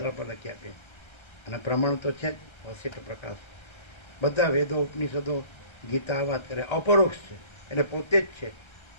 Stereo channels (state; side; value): late; right; 1.3 ms